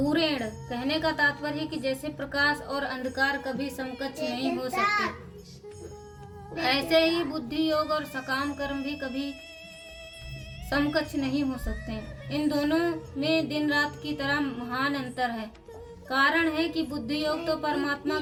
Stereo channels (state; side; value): identical; both; correlation 1.00